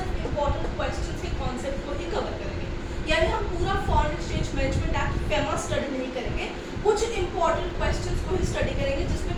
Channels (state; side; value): identical; both; correlation 1.00